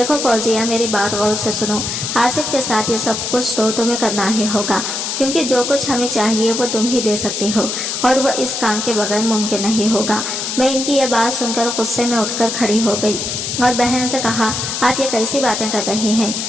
फौजिया, मेरी बात गौर से सुनो। आसिफ के साथ ये सब कुछ तो तुम्हें करना ही होगा क्योंकि जो कुछ हमें चाहिए वो तुम ही दे सकती हो और वह इस काम के बगैर मुमकिन नहीं होगा। मैं इनकी यह बात सुनकर गुस्से में उठकर खड़ी हो गई और बहन से कहा, आप ये कैसी बातें कर रही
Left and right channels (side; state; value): left; noise; hiss, 3 dB below the sound